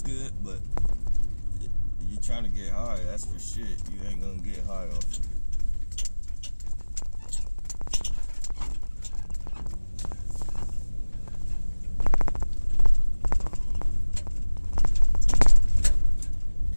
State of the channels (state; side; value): inverted; both; correlation -1.00